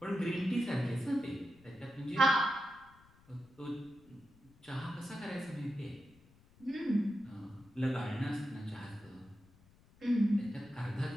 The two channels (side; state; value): left; noise; rumble, 27 dB below the sound